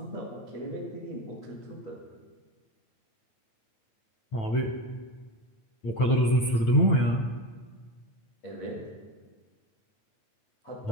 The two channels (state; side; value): late; right; 9.0 ms